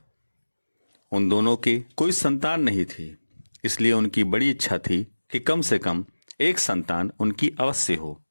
उन दोनों की कोई संतान नहीं थी, इसलिए उनकी बड़ी इच्छा थी कि कम से कम एक संतान उनकी अवश्य हो।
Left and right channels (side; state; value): both; inverted; correlation -1.00